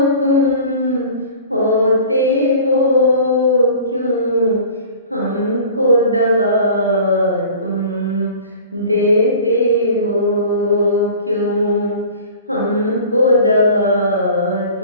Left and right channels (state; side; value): inverted; both; correlation -0.43